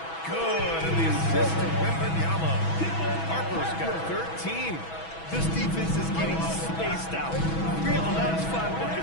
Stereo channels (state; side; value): late; right; 6.1 ms